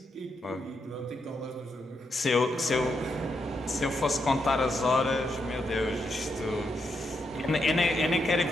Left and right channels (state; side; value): normal; both; correlation 0.81